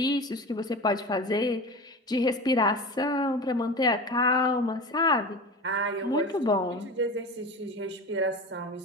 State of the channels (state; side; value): normal; both; correlation 0.30